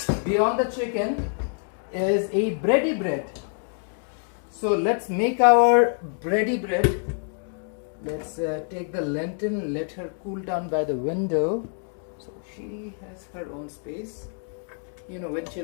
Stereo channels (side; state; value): right; silent; 56 dB below the other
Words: beyond the chicken, is a bready bread. So let's make our bready bread. Let's take the lantern, let her cool down by the window. So she has her own space. You know, when